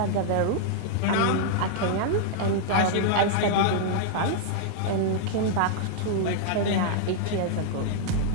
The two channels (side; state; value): both; different; correlation -0.01